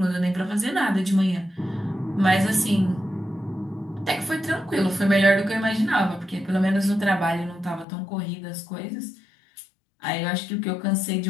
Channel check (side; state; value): right; drops out; at 7.9 s